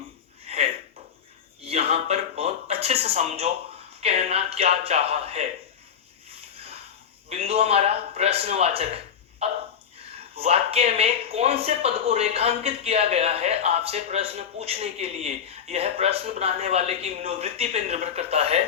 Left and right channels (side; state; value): right; quieter; 8.0 dB